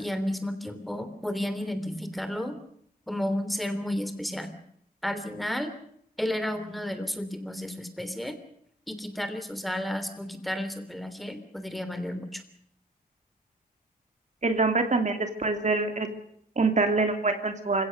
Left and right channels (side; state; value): both; normal; correlation 0.56